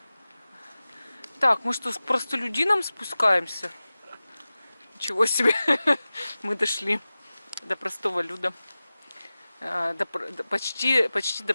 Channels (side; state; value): both; inverted; correlation -0.97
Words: Так, мы что, с простолюдином спускаемся? Ничего себе. Мы дошли до простого люда. Почти до